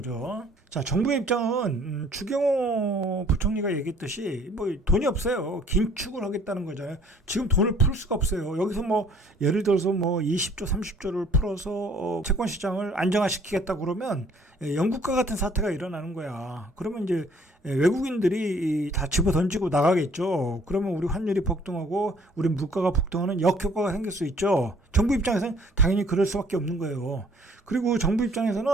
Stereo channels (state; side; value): normal; both; correlation 0.57